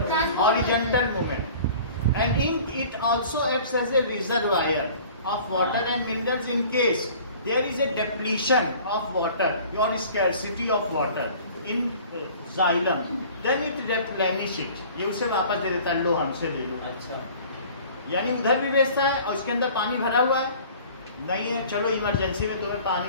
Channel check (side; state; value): both; inverted; correlation -0.47